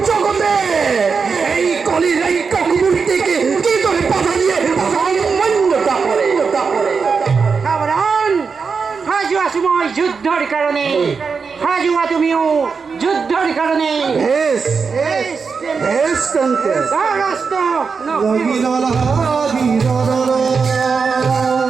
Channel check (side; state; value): left; quieter; 5.3 dB